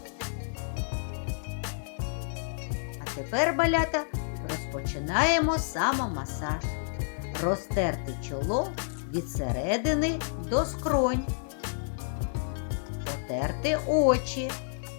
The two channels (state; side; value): silent; right; digital silence